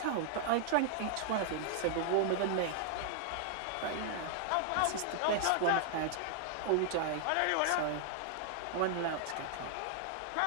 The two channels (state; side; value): different; both; correlation -0.01